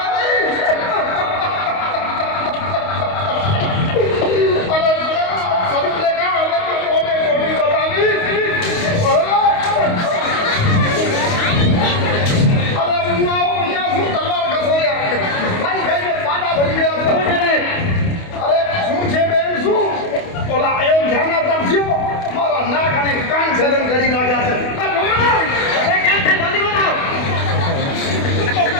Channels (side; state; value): right; late; 28 ms